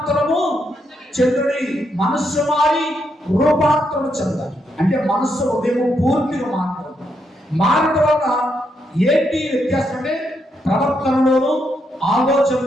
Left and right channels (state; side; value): normal; both; correlation 0.79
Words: చెందుడి. మనస్సు మారి రూపాంతరము చెందాలి. అంటే మనస్సు ఉదయం పూర్తిగా మారడం వల్ల ఏంటి వ్యత్యాసం అంటే ప్రవర్తనలోను